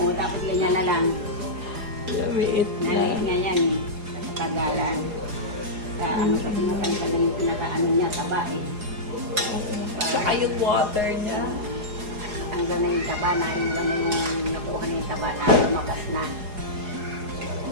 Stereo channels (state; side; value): late; left; 4.8 ms